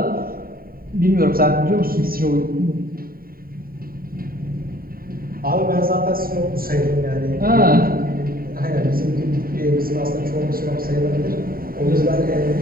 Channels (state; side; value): late; left; 0.43 ms